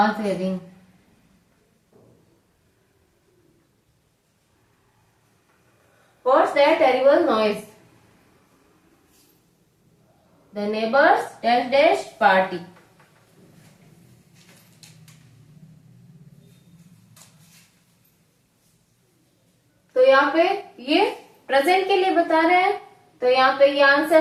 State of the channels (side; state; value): both; identical; correlation 1.00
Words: having। What's that terrible noise? The neighbors dash dash party। तो यहाँ पे ये प्रेजेंट के लिए बता रहे हैं, तो यहाँ पे ये